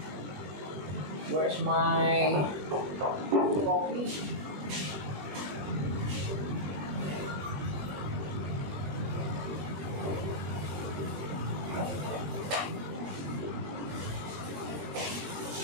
Where's my coffee?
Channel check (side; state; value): left; late; 21 ms